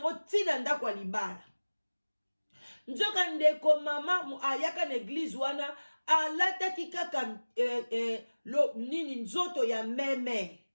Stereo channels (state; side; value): inverted; both; correlation -1.00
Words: ntina ndako ya libala nzoka ndeko mama ayaka na église wana alataki kaka nini nzoto ya meme